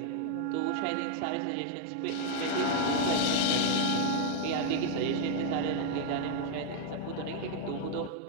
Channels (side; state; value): both; different; correlation 0.00